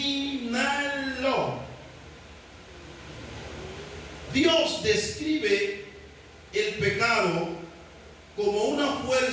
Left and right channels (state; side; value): identical; both; correlation 1.00